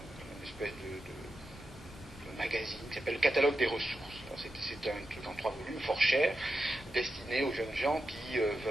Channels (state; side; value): normal; both; correlation 0.89